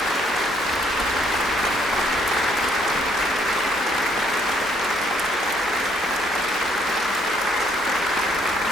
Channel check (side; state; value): both; normal; correlation 0.67